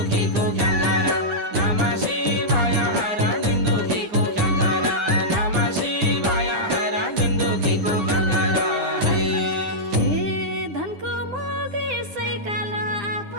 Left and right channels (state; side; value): late; left; 9.8 ms